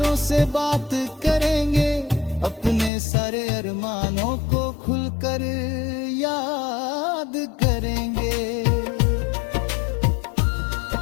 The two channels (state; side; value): drops out; right; at 2.9 s